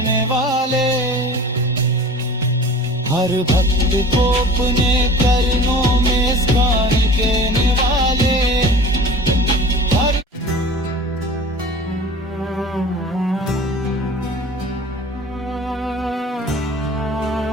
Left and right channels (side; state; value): both; normal; correlation 0.41